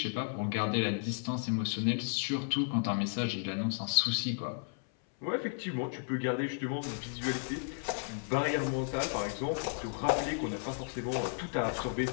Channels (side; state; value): right; silent; 55 dB below the other